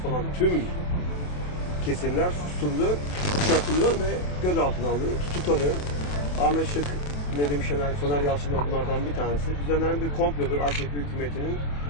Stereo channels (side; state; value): right; late; 28 ms